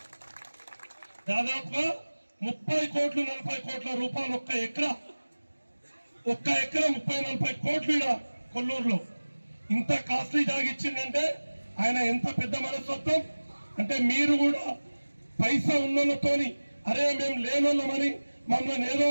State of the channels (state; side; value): inverted; both; correlation -1.00